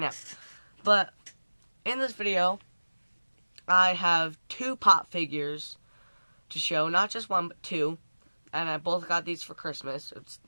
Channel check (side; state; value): both; inverted; correlation -1.00